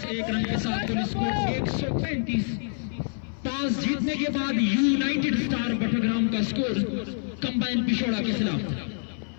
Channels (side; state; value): right; silent; 60 dB below the other